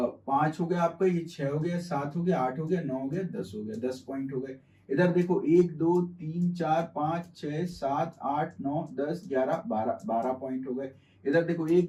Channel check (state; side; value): identical; both; correlation 1.00